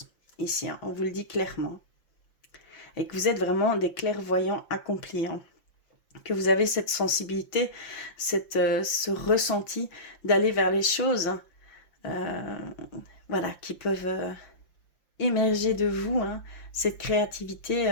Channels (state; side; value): late; right; 5.8 ms